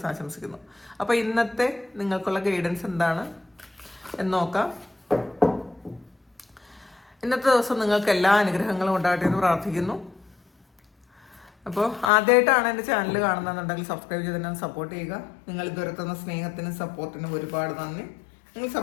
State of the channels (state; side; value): drops out; right; at 12.1 s